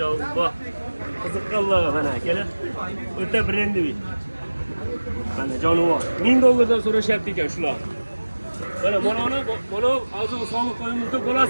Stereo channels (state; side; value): inverted; both; correlation -1.00